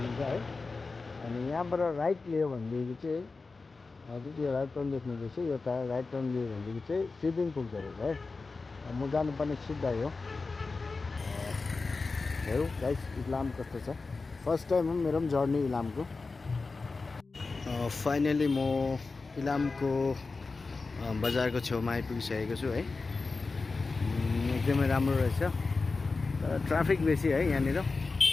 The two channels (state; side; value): quieter; right; 4.0 dB